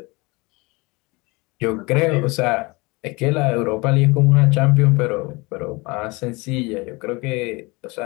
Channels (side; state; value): right; quieter; 25.4 dB